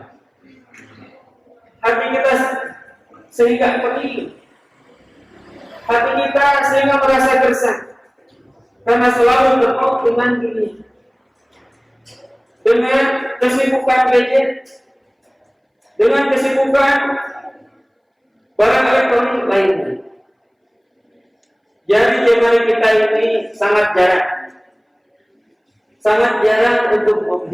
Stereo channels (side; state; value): both; identical; correlation 1.00